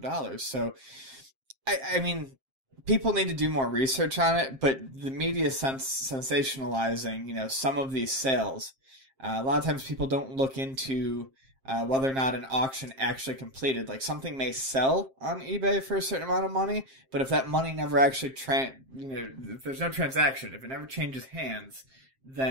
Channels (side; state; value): left; late; 7.5 ms